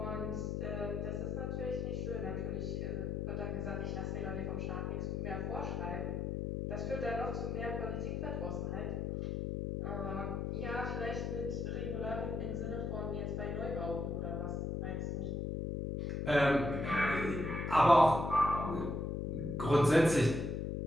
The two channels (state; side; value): noise; left; hum, 2 dB below the sound